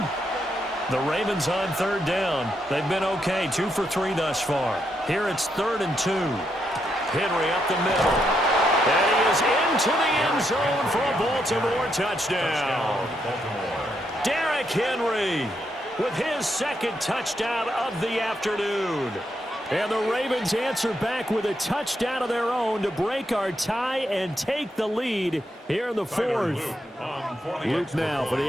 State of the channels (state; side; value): normal; both; correlation 0.79